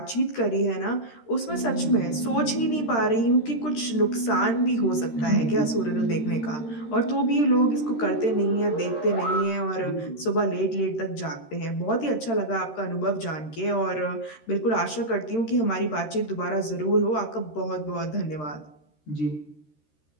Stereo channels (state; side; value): late; right; 13 ms